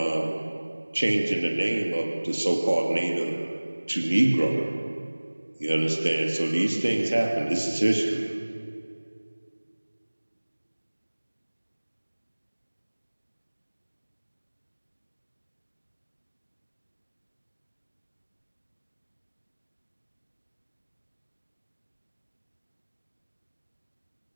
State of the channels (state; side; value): inverted; both; correlation -1.00